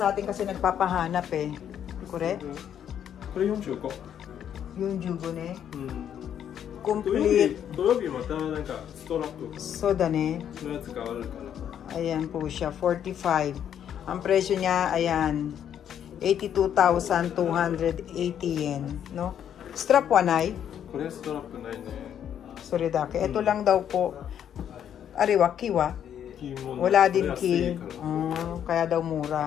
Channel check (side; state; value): right; quieter; 9.4 dB